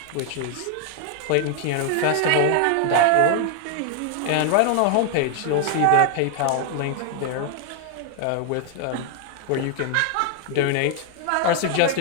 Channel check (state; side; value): different; both; correlation 0.00